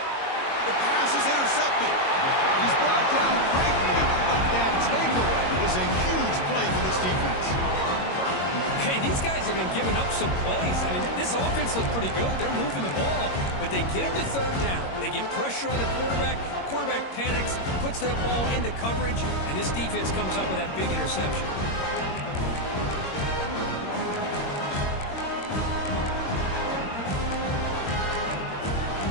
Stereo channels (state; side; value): late; right; 22 ms